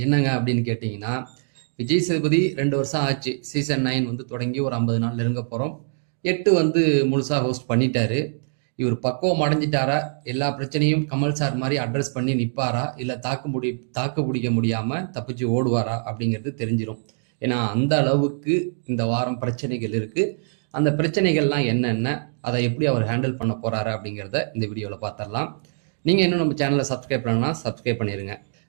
என்னங்க அப்படின்னு கேட்டிங்கன்னா, விஜய் சேதுபதி 2 வருஷம் ஆச்சு. சீசன் 9 வந்து தொடங்கி ஒரு 50 நாள் நெருங்க போகிறோம். 8 வந்து முழுசாக ஹோஸ்ட் பண்ணிட்டாரு. இவர் பக்குவம் அடைஞ்சிட்டாரா, எல்லா பிரச்சனையும் கமல் சார் மாதிரி அட்ரஸ் பண்ணி நிற்பாரா, இல்லை தாக்கு பிடிக்க முடியாமல் தப்பிச்சு ஓடுவாரா அப்படிங்கிறது தெரிஞ்சிடும். ஏன்னா அந்த அளவுக்கு இந்த வாரம் பிரச்சனைகள் இருக்குது. அந்த பிரச்சனைகள்லாம் என்னென்ன, அதை எப்படி அவர் ஹேண்டில் பண்ண போகிறாரு அப்படிங்கிறத இந்த வீடியோவில் பார்த்துடலாம். நீங்கள் இன்னும் நம்ம சேனலை சப்ஸ்கிரைப் பண்ணணும்னா சப்ஸ்கிரைப் பண்ணிடுங்க.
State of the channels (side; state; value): left; silent; digital silence